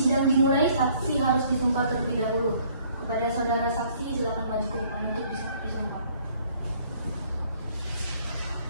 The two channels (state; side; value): inverted; both; correlation -0.60